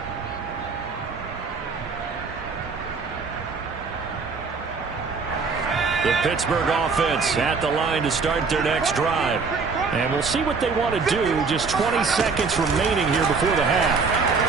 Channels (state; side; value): quieter; left; 4.8 dB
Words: The Pittsburgh offense at the line to start their next drive. And we'll see what they want to do. Just 20 seconds remaining here before the half.